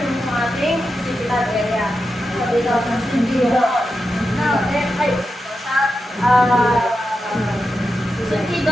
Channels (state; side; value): normal; both; correlation 0.89